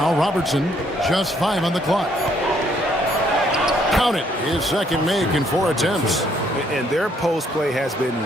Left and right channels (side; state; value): both; normal; correlation 0.68